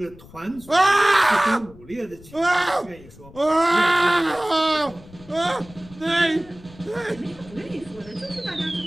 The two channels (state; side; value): noise; left; rumble, 21 dB below the sound